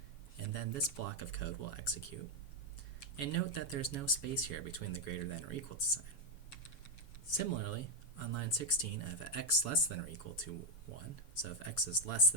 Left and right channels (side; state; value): right; late; 7.3 ms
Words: and then this block of code will execute. And note that there's no space here between the greater than or equal to sign. Similarly, on line 16, I have a x less than or equal to 1. So if x is less